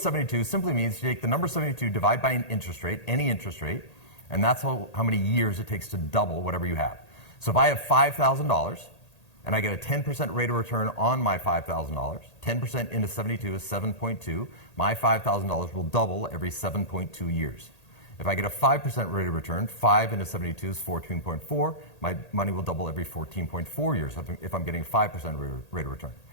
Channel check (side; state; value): right; late; 1.8 ms